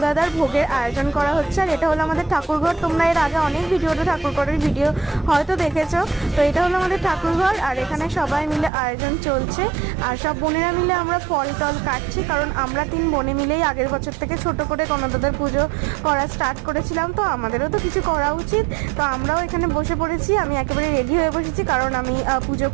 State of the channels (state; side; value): drops out; left; at 8.7 s